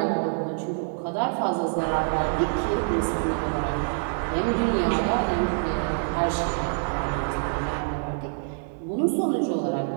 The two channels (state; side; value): silent; left; digital silence